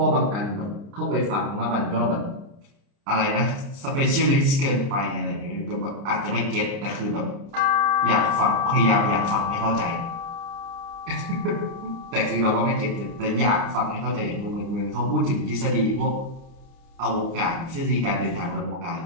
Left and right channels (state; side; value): late; left; 29 ms